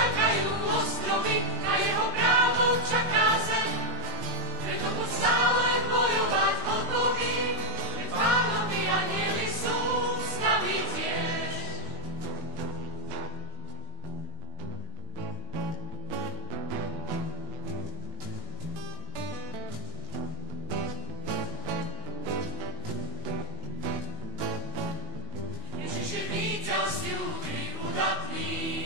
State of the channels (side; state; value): left; late; 19 ms